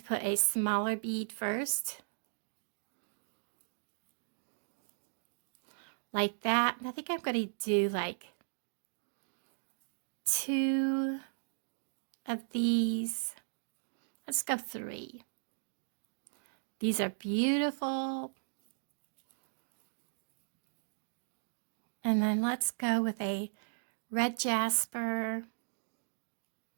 put a smaller bead first. Like that. I think I'm going to do like 2 of these. Let's go 3. These are beautiful. And then let's go with a red jasper.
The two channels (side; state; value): left; silent; digital silence